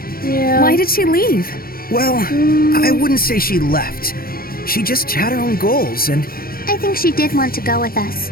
Yeah. Why did she leave? Well, I wouldn't say she left. She just had her own goals, and I think she did want to go with us,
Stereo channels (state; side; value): late; right; 0.43 ms